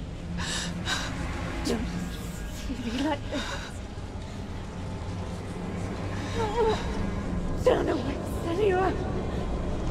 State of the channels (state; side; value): identical; both; correlation 1.00